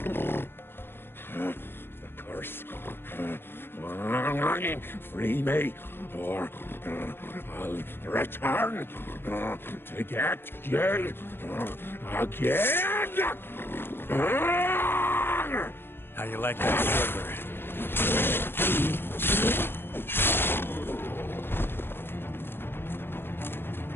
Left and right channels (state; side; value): late; right; 0.10 ms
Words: curse. Free me, or I'll return to get you again. How you like that sugar?